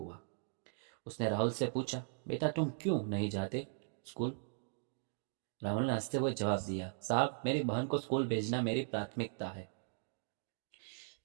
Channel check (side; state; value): left; silent; digital silence